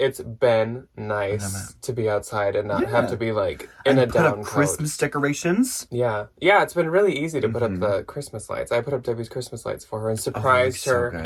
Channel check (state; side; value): identical; both; correlation 1.00